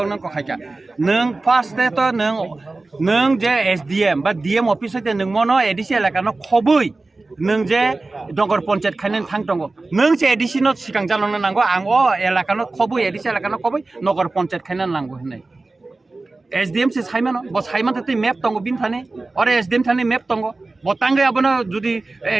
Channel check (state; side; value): quieter; left; 3.3 dB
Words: कखायका नों फार्स्ट तो नों जे एसडीएम बा डीएम ऑफिस ते नों मनो एडिसि एलाकानो खबै नों जे नगर पंचायत खायनो थां दङ नों जे एडिसिनो सिगां जालांनो नांगौ आं एलाकानो खबै एडिसि एलाकानो खबै नगर पंचायत खायनो नांगौ होननाय एसडीएम से साइमानो ब साइमान ते मैप दङ बिन थाने और एसडीएम थाने मैप दङ बतांगे आबनो जुदि